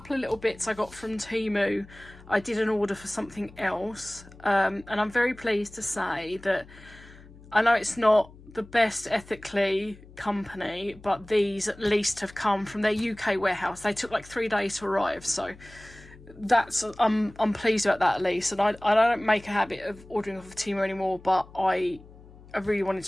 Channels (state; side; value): noise; left; hum, 21 dB below the sound